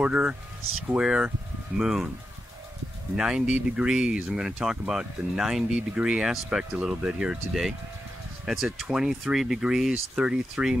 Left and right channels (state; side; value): normal; both; correlation 0.88